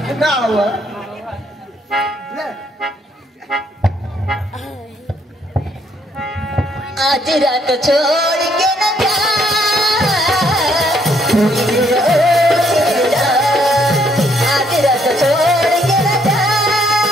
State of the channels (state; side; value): normal; both; correlation 0.69